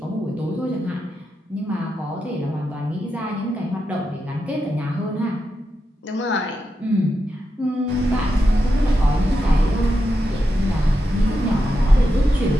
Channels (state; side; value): normal; both; correlation 0.87